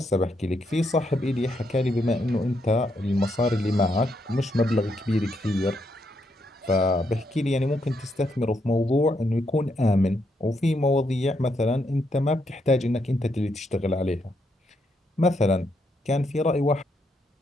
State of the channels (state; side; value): normal; both; correlation 0.78